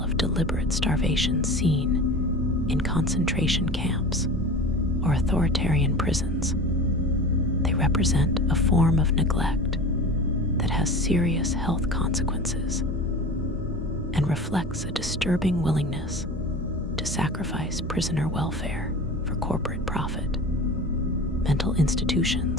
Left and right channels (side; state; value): both; normal; correlation 0.34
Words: of deliberate starvation seen in concentration camps or authoritarian prisons, they represent a form of neglect that has serious health consequences and reflects a disturbing willingness to sacrifice prisoner welfare for corporate profit. Mental